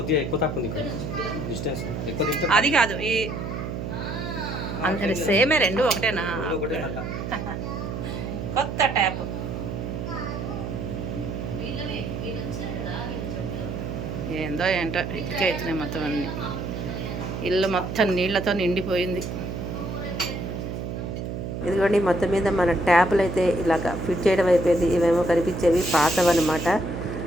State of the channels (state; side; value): noise; right; hum, 5 dB below the sound